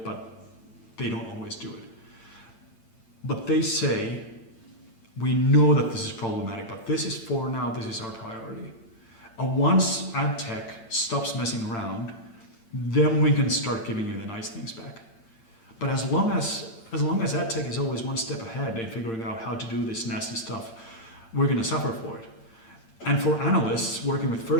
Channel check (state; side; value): late; right; 8.9 ms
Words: but they don't always do it. But they say, we know that this is problematic, but this is for now, this is our priority. And once AdTech stops messing around, then we can start giving you the nice things back. But as long as AdTech is always one step ahead in figuring out how to do this nasty stuff, we're going to suffer for it. And for analysts working with